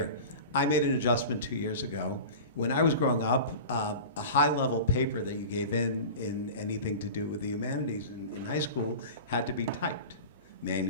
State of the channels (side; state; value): both; inverted; correlation -0.34